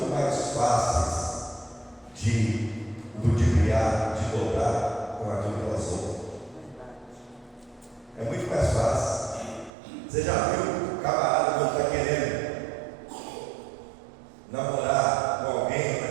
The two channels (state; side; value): drops out; left; at 9.7 s